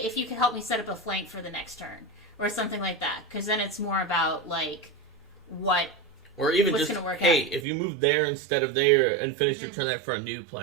you could help me set up a flank for the next turn or something like that, because then it's more about like or even just, hey, if you move there instead of there and finish your turn there, for a new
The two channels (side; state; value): left; drops out; at 7.7 s